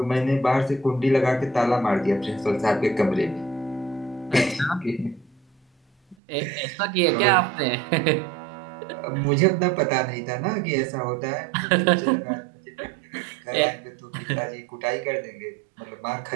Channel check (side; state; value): left; drops out; at 6.2 s